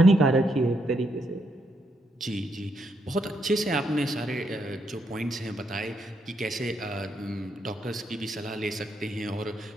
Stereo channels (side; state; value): both; normal; correlation 0.78